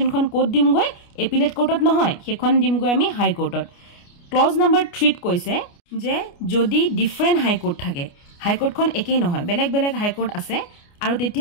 কোড দিম গৈ এপিলেট কোৰ্টত নহয় সেইখন দিম গৈ আমি হাই কোৰ্টত ক্লজ নম্বৰ 3 ত কৈছে যে যদি ডিফাৰেন্ট হাই কোৰ্ট থাকে হাই কোৰ্টখন একেই নহয় বেলেগ বেলেগ হাই কোৰ্ট আছে আৰু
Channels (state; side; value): late; right; 29 ms